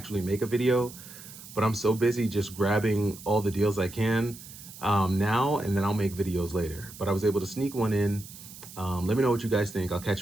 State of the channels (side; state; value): right; noise; hiss, 16 dB below the sound